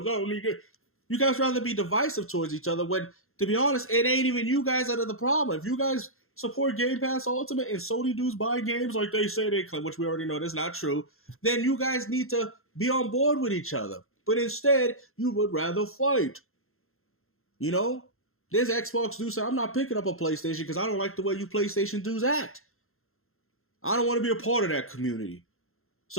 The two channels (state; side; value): late; right; 0.62 ms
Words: I don't need it. You guys rather be divisive towards each other when, to be honest, it ain't even you guys that are the problem. If you guys support Game Pass Ultimate and Sony dudes buy games like they say they claim, which we already know that's not true, then you guys need to be on board with each other. But instead, you would rather fight. You know? There's Xbox dudes say, I'm not picking up a PlayStation because I don't like the way you PlayStation dudes act. I don't want to be a part of that community.